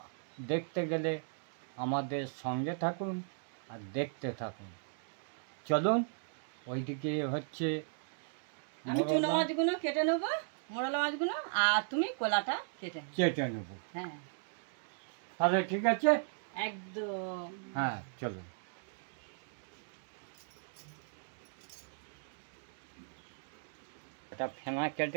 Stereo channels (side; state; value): left; silent; digital silence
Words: দেখতে গেলে আমাদের সঙ্গে থাকুন আর দেখতে থাকুন। চলুন, ওইদিকে হচ্ছে আমি চুনো মাছগুলো কেটে নেবো, মোরলা মাছগুলো, আর তুমি কলাটা কেটে নেব। হ্যাঁ, তাহলে ঠিক আছে, একদম। হ্যাঁ চলুন। এটা ফেনা